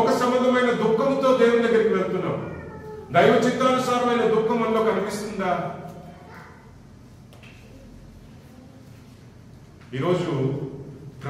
సంబంధమైన దుఃఖంతో దేవుని దగ్గరికి వెళ్తున్నాం. దైవ చిత్తానుసారమైన దుఃఖం మనలో కనిపిస్తుందా? ఈరోజు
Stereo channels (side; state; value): both; identical; correlation 1.00